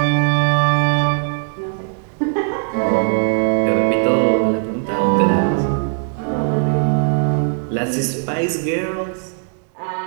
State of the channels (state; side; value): silent; left; digital silence